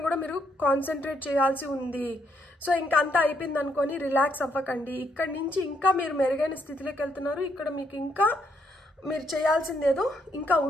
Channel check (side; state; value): both; normal; correlation 0.74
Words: కూడా మీరు కాన్సన్ట్రేట్ చేయాల్సి ఉంది. సో ఇంకా అంతా అయిపోయింది అనుకొని రిలాక్స్ అవ్వకండి. ఇక్కడి నుంచి ఇంకా మీరు మెరుగైన స్థితిలోకి వెళ్తున్నారు. ఇక్కడ మీకు ఇంకా మీరు చేయాల్సింది ఏదో ఇంకా